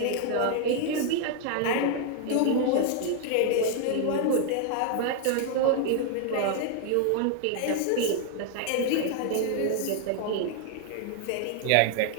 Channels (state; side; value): different; both; correlation 0.00